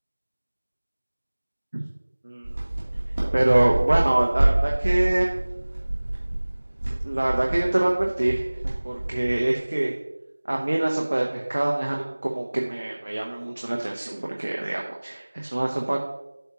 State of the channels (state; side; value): inverted; both; correlation -1.00